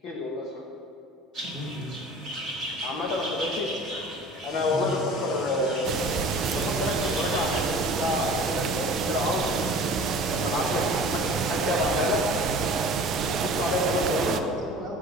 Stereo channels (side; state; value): both; normal; correlation 0.42